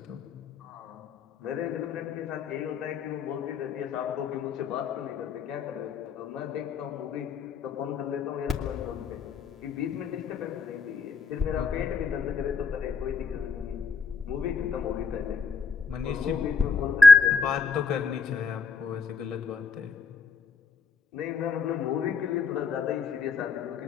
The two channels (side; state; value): right; quieter; 4.8 dB